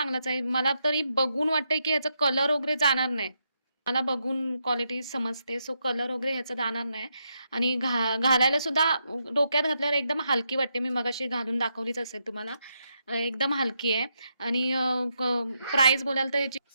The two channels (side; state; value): both; inverted; correlation -0.82